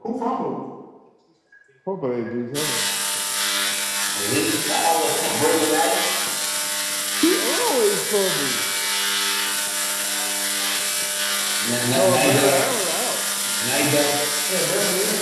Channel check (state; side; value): identical; both; correlation 1.00